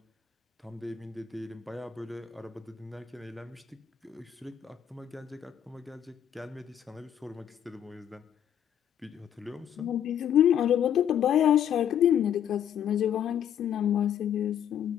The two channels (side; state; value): right; quieter; 9.5 dB